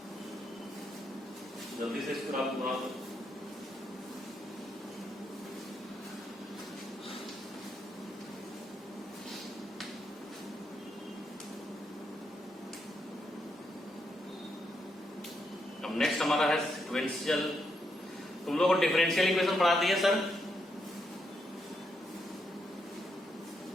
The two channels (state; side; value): normal; both; correlation 0.80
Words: जल्दी से इस ग्राफ को बना दो। अब नेक्स्ट हमारा है सिक्वेंशियल। तुम लोगों को डिफरेंशियल इक्वेशन पढ़ाती है सर?